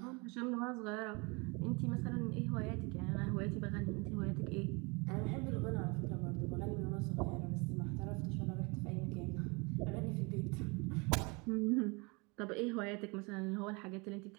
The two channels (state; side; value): quieter; left; 28.9 dB